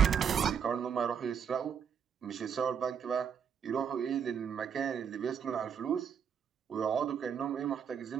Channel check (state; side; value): quieter; left; 7.5 dB